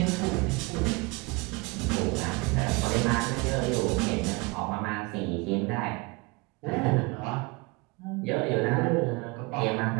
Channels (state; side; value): quieter; left; 26.4 dB